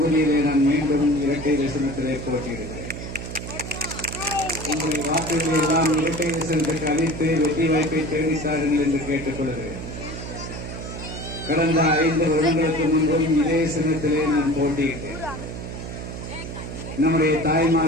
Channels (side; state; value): right; noise; hum, 8 dB below the sound